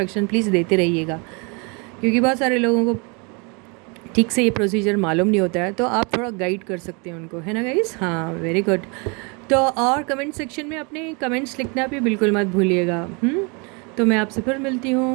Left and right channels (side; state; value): left; quieter; 31.7 dB